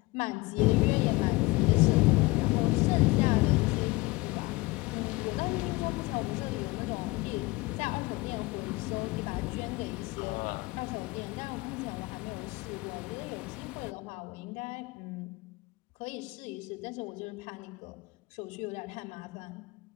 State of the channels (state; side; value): quieter; right; 22.6 dB